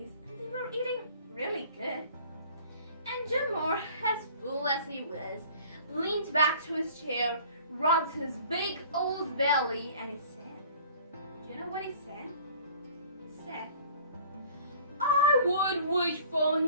and they were eating really good. And Jomar, as full as he was, leaned back to his chair, rubbed his big old belly, and he said, do you know what he said? He said, "I would wish for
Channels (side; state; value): both; inverted; correlation -0.49